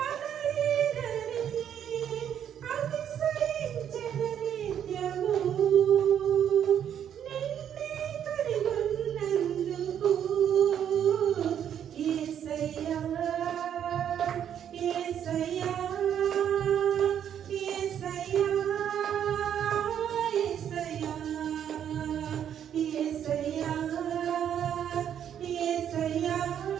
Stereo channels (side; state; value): left; quieter; 9.3 dB